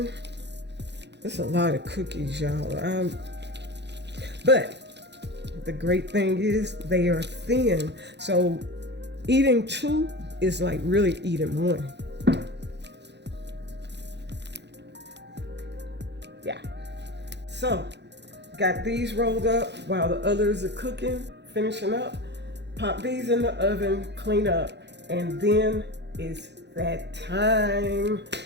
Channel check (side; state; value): left; late; 0.50 ms